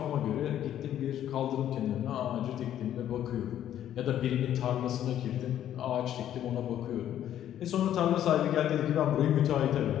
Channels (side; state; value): right; quieter; 11.1 dB